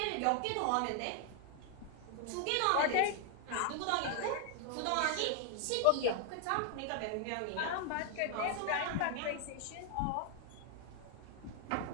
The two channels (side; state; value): both; different; correlation 0.00